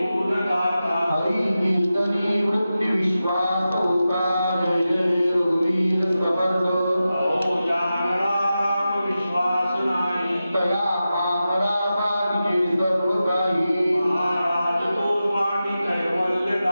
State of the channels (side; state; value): both; inverted; correlation -0.93